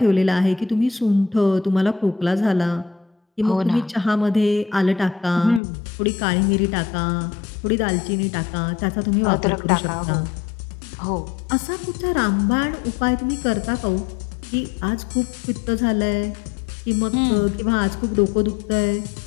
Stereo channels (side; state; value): right; drops out; at 5.6 s